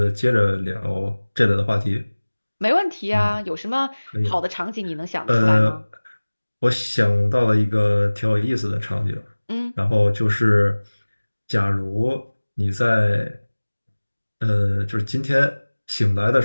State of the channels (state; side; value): inverted; both; correlation -1.00